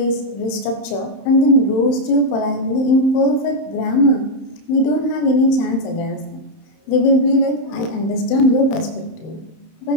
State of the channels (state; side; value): late; right; 31 ms